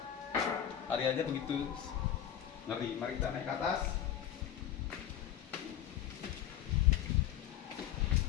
Hari aja begitu ngeri. Mari kita naik ke atas.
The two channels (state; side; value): quieter; right; 10.5 dB